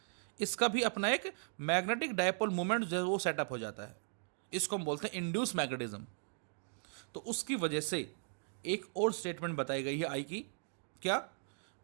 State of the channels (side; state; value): left; silent; digital silence